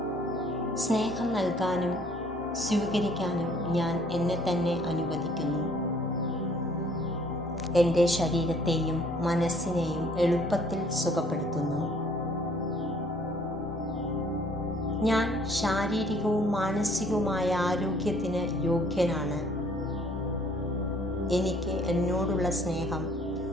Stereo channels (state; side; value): normal; both; correlation 0.60